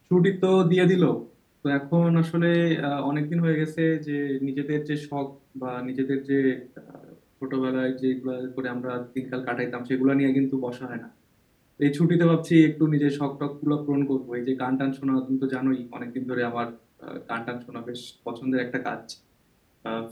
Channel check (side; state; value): both; identical; correlation 1.00